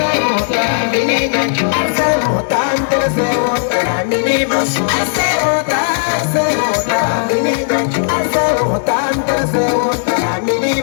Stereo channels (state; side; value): silent; right; digital silence